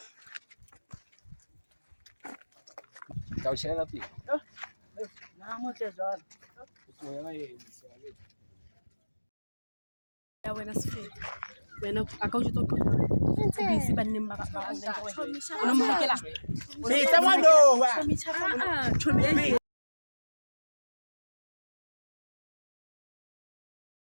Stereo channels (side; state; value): both; inverted; correlation -1.00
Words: I'll share up here. Now, much as all. Ya wena sifete. Wena akawujitoka. Busy banning ba ba. Unomhekela. Hey, someone know. Chomi chaka. Chomi.